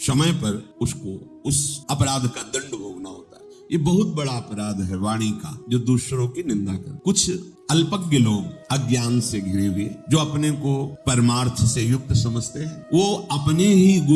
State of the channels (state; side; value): identical; both; correlation 1.00